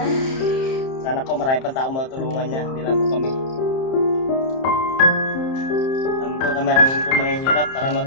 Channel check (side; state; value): right; late; 30 ms